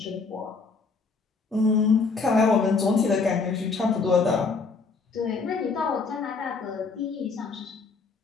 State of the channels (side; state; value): right; quieter; 4.4 dB